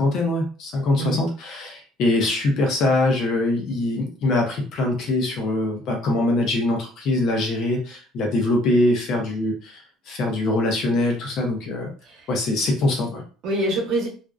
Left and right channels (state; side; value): normal; both; correlation 0.62